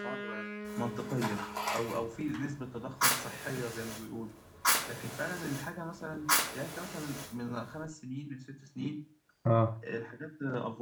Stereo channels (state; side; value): identical; both; correlation 1.00